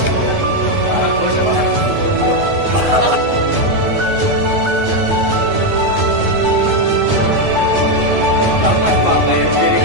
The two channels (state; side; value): late; left; 9.5 ms